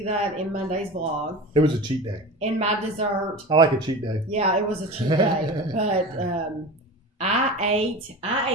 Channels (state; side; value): normal; both; correlation 0.31